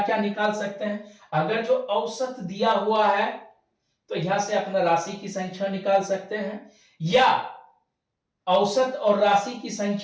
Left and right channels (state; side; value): identical; both; correlation 1.00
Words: क्या निकाल सकते हैं? अगर जो औसत दिया हुआ है तो यहां से अपना राशि की संख्या निकाल सकते हैं, या औसत और राशि की